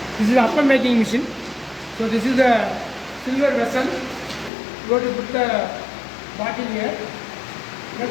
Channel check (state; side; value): drops out; right; at 4.5 s